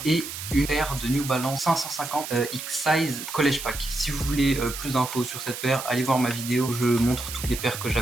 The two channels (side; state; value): right; noise; hiss, 8 dB below the sound